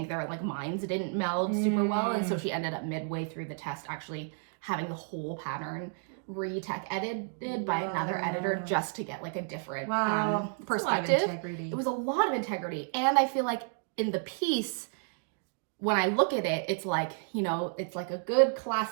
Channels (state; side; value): silent; left; 57 dB below the other